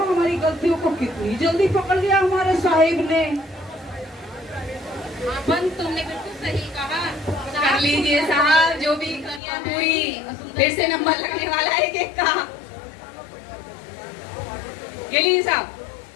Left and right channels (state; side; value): drops out; right; at 9.4 s